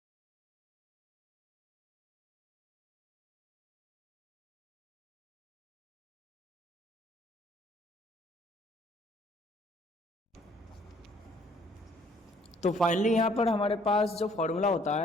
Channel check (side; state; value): both; normal; correlation 0.61